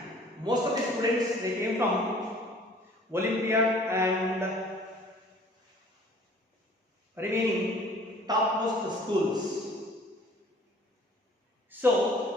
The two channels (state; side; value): normal; both; correlation 0.52